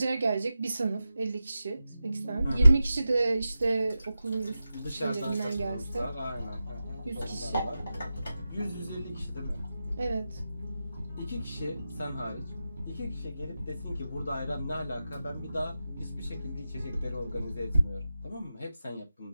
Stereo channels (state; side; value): inverted; both; correlation -0.92